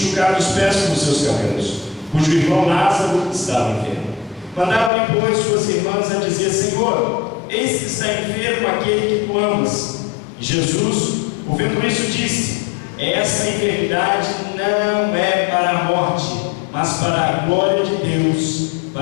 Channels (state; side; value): drops out; right; at 4.9 s